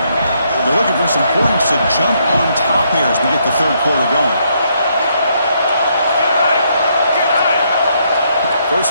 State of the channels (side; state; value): both; inverted; correlation -0.73